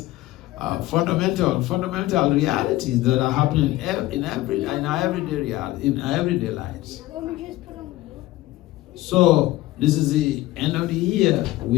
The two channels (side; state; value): right; quieter; 16.9 dB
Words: fundamental realities that are happening in our everyday lives. So this is the end of the year.